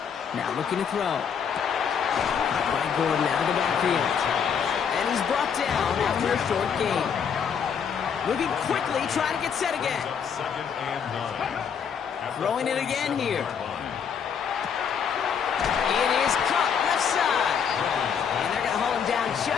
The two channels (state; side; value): quieter; right; 7.2 dB